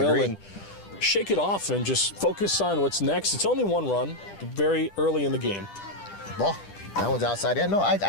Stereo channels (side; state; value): right; late; 10 ms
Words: and shake it off and just focus on what's next. It's only one run, very early in the game. Ball. That one's outside. Yeah, no, I